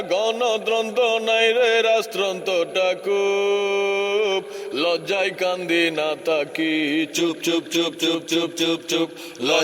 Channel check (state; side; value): identical; both; correlation 1.00